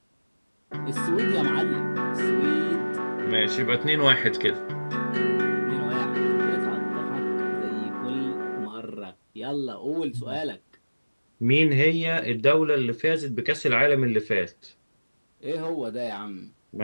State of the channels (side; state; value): both; inverted; correlation -1.00